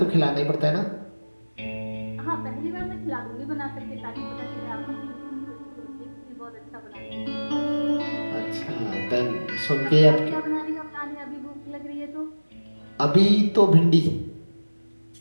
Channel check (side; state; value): both; inverted; correlation -1.00